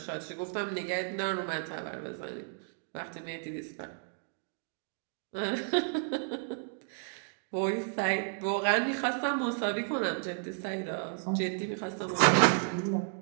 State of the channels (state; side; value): silent; left; 56 dB below the other